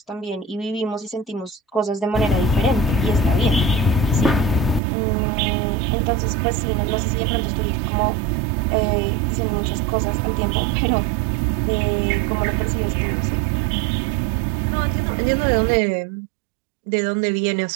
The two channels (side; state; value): left; drops out; at 4.8 s